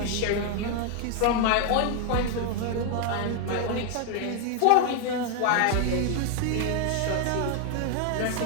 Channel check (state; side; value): different; both; correlation 0.00